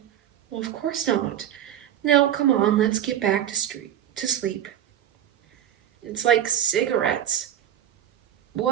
Well, of course not. Now, come on, let's get back to sleep. It's like cigarettes.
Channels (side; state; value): left; quieter; 10.8 dB